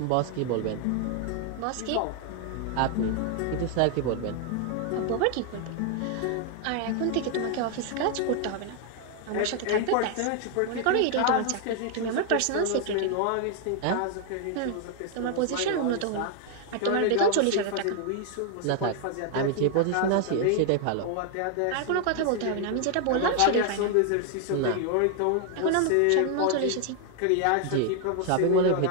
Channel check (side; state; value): both; different; correlation 0.00